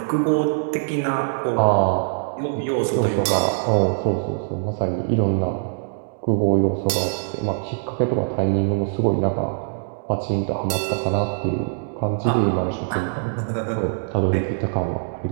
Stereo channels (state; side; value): silent; left; digital silence